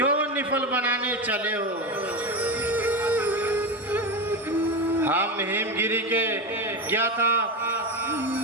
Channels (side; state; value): both; normal; correlation 0.17